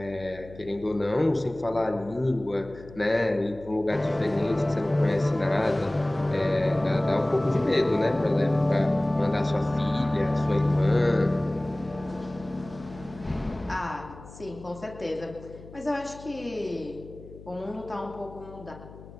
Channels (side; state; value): left; noise; hum, 18 dB below the sound